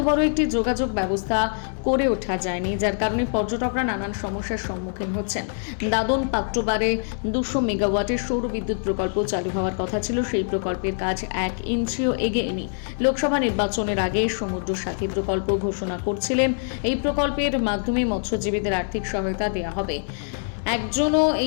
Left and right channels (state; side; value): silent; right; digital silence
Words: বড় একটি যোগাযোগ ব্যবস্থা করে ওঠা যায়নি, যার কারণে পর্যটকরা নানান সমস্যার সম্মুখীন হচ্ছেন। দাদন পাত্রবারে 200 মেগাওয়াটের সৌর বিদ্যুৎ প্রকল্প চালু হওয়ার কথা ছিল, সেই প্রকল্পের কাজ 1 ইঞ্চিও এগোয়নি। লোকসভা নির্বাচনের আগে সমুদ্র সাথী প্রকল্প ঘোষণা করছিলেন। এই প্রকল্পের মাধ্যমে মৎস্যজীবীদের আর্থিক সহায়তা দেওয়া হবে। একজনও